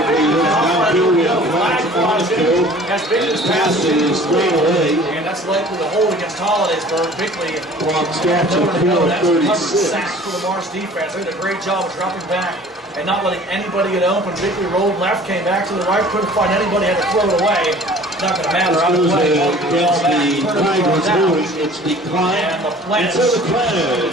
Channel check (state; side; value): normal; both; correlation 0.48